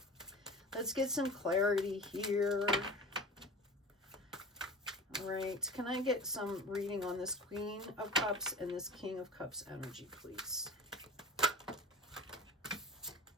Let's get some clarity here. All right, can I get some reading on this Queen of Cups and this King of Cups energy, please?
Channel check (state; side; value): normal; both; correlation 0.34